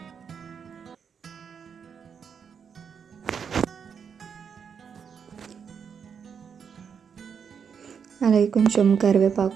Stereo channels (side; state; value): left; quieter; 6.9 dB